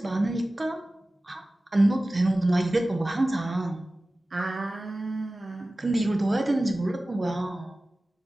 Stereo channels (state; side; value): normal; both; correlation 0.97